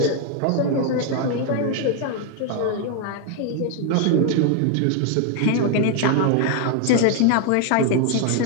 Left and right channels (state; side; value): different; both; correlation 0.01